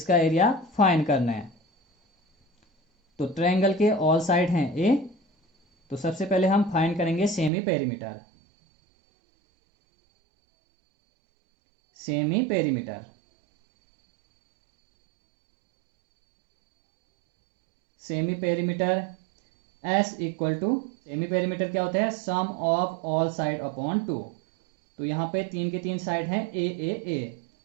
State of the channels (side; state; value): left; drops out; at 7.5 s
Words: एरिया फाइंड करना है। तो ट्रायंगल के ऑल साइड हैं ए, तो सबसे पहले हम फाइंड करेंगे semi perimeter. Semi perimeter, semi perimeter S equal to, semi perimeter क्या होता है, sum of all side upon 2। तो यहाँ पे 3 के 3 साइड हैं ए ए ए।